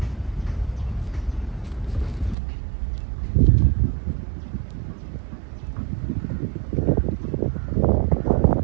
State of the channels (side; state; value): left; drops out; at 2.4 s